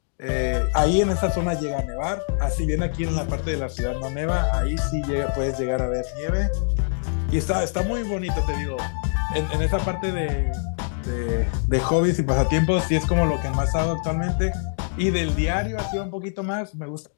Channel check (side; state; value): right; silent; digital silence